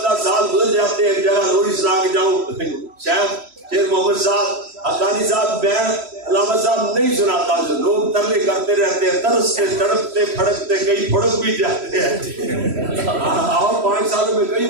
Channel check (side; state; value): left; late; 3.1 ms